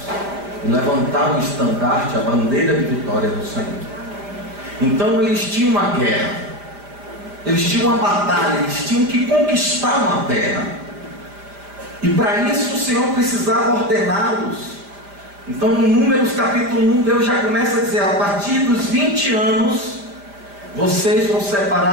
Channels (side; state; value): left; late; 5.0 ms